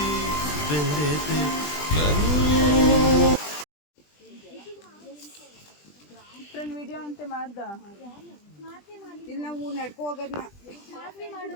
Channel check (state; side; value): late; right; 20 ms